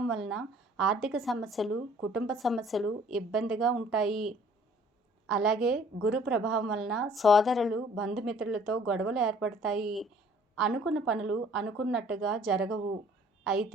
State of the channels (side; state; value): both; normal; correlation 0.55